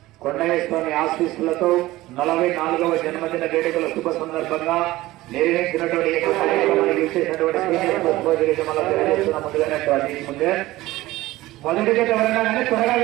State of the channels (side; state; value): left; quieter; 17.6 dB